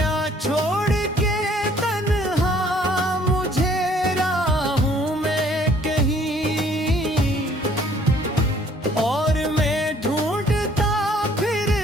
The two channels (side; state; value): both; normal; correlation 0.60